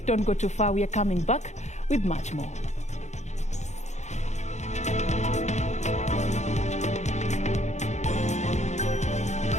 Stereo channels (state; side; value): late; right; 0.33 ms